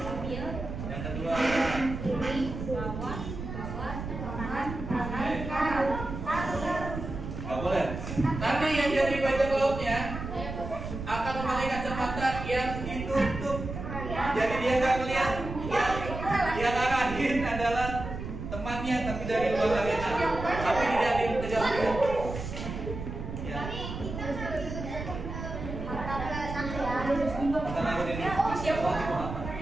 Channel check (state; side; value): noise; right; rumble, 7 dB below the sound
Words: Yang kedua nggak boleh. Nanti yang jadi bajak lautnya akan memakai kacamata yang ditutup. Jadi dia nggak melihat. Yang arahin adalah temannya, tapi dari luar arena. Tapi tidak dikejar-kejar. Ya.